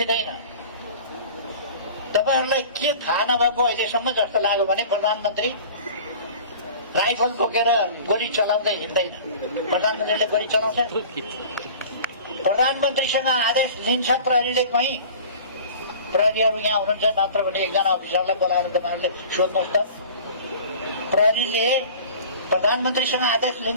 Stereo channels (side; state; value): both; inverted; correlation -0.41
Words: तपाईहरुलाई के थाहा नभएको अहिलेसम्म जस्तो लाग्यो भने प्रधानमन्त्री राइफल बोकेर गोली चलाउँदै हिँड्दैन। प्रधानमन्त्रीले गोली चलाउँछ। प्रधानमन्त्रीसँग आदेश लिन्छ प्रहरीले। कहीँ प्रहरीहरू यहाँ हुनुहुन्छ, नत्र भने एकजना अफिसरलाई बोलाएर तपाईहरुले सोध्नुहोस् त, प्रहरीले प्रधानमन्त्रीसँग आदेश